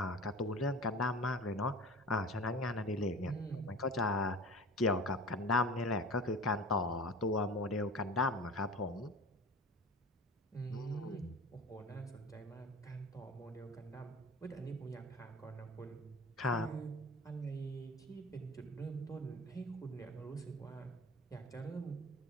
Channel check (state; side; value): normal; both; correlation 0.36